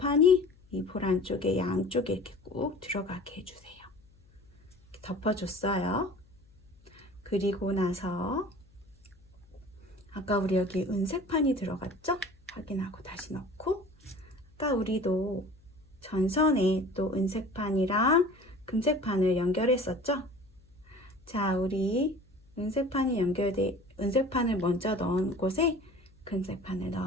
이 볼 안쪽에 양쪽에 이렇게 꾹 들어가게 해주세요. 이렇게 덮어줬어요. 그리고 나서 아까 우리 여기 은색판이 들어갔죠? 확인하고 다시 넣고, 아까 우리도 전선에 또 은색판이랑 금색판을 연결했었죠? 자, 우리 은색판을 먼저 넣은 곳에 금색판을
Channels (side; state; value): left; noise; hum, 29 dB below the sound